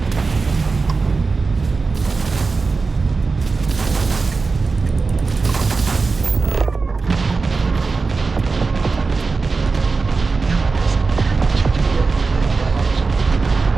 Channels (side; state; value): left; quieter; 4.2 dB